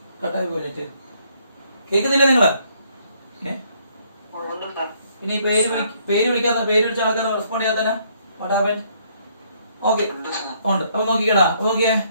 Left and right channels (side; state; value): both; inverted; correlation -0.68